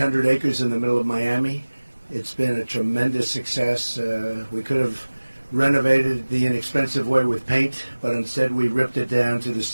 acres in the middle of Miami. It's been a tremendous success. We could have renovated the inexpensive way with paint, but instead we ripped it down to the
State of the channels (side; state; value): both; inverted; correlation -1.00